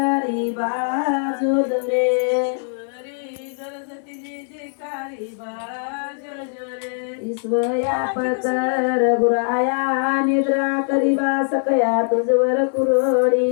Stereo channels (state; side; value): silent; right; 62 dB below the other